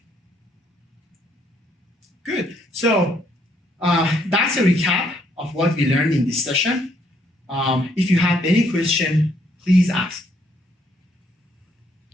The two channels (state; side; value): normal; both; correlation 0.69